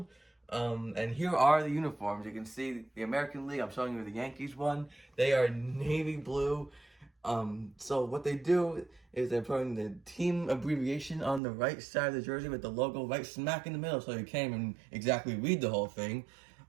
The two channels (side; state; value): left; drops out; at 11.4 s